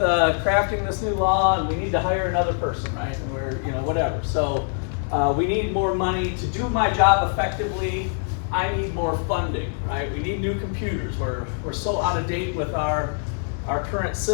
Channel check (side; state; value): right; silent; 59 dB below the other